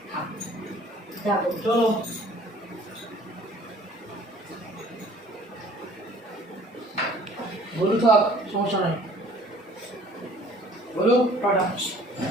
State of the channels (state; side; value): normal; both; correlation 0.53